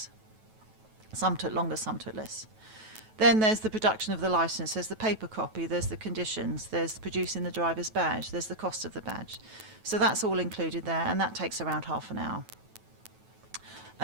Some took longer, some took less. Then there's the production of the licence, there's the paper copy, there's the conditions, there's producing the driver's badge, there's the cost of the badge. So that's all included there, and that takes around half an hour.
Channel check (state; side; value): late; left; 9.2 ms